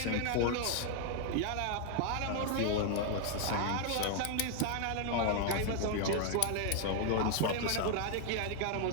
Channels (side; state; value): both; different; correlation 0.00